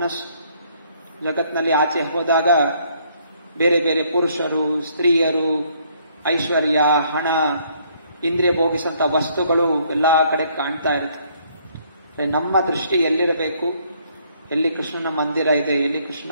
ಜಗತ್ನಲ್ಲಿ ಆಚೆ ಹೋದಾಗ ಬೇರೆ ಬೇರೆ ಪುರುಷರು, ಸ್ತ್ರೀಯರು, ಐಶ್ವರ್ಯ, ಹಣ, ಇಂದ್ರಿಯ ಭೋಗಿಸುವಂತ ವಸ್ತುಗಳು ಎಲ್ಲಾ ಕಡೆ ಕಾಣ್ತಾ ಇರುತ್ತೆ. ನಮ್ಮ ದೃಷ್ಟಿ ಎಲ್ಲಿರಬೇಕು, ಎಲ್ಲಿ ಕೃಷ್ಣನ ಮಂದಿರ ಇದೆ, ಎಲ್ಲಿ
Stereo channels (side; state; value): both; inverted; correlation -0.66